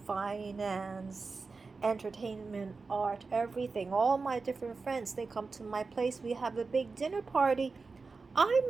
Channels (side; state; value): left; quieter; 4.3 dB